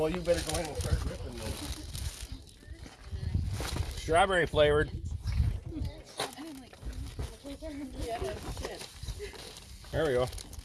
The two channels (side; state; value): both; identical; correlation 1.00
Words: you better go ahead and start ripping then. Strawberry flavored. Yeah, that's shit. There we go.